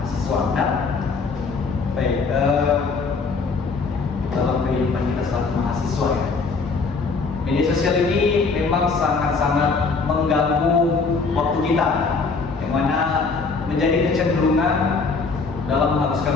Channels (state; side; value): quieter; right; 4.5 dB